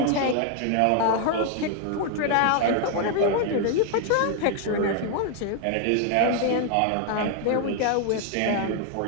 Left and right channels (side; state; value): both; different; correlation 0.00